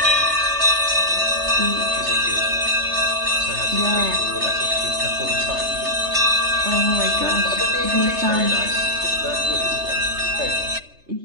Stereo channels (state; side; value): late; left; 3.3 ms